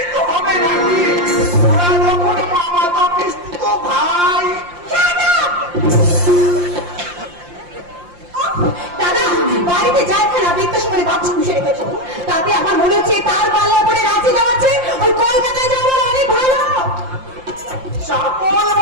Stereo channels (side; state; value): left; late; 5.7 ms